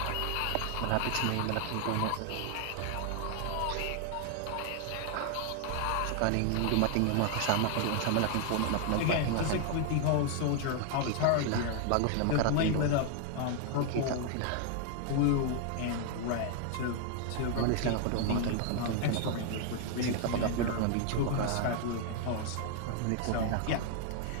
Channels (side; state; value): both; different; correlation 0.00